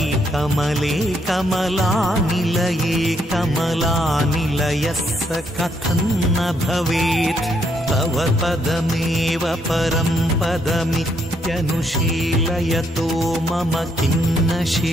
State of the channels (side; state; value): both; normal; correlation 0.74